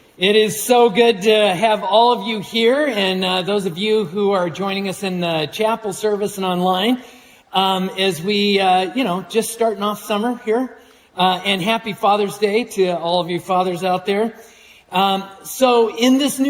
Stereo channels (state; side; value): identical; both; correlation 1.00